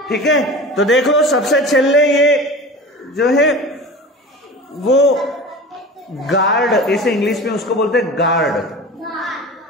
ठीक है। तो देखो सबसे छेले ये जो है वो गार्ड, इसे इंग्लिश में उसको बोलते हैं गार्ड।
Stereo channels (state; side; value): normal; both; correlation 0.35